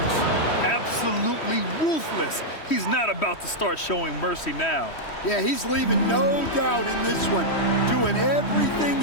Absolutely ruthless. He's not about to start showing mercy now. Yeah, he's leaving no doubt in this one. Doing everything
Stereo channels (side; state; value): right; late; 3.1 ms